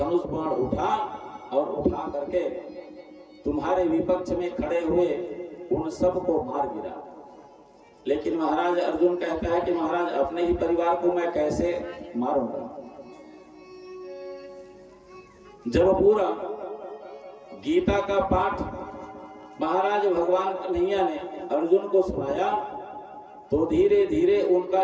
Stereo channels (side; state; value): both; identical; correlation 1.00